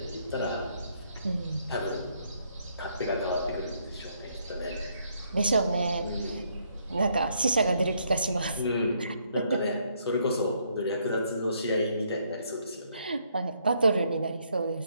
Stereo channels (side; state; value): both; inverted; correlation -0.71